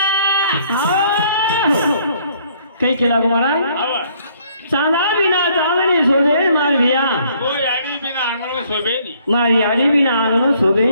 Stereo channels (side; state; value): both; inverted; correlation -0.64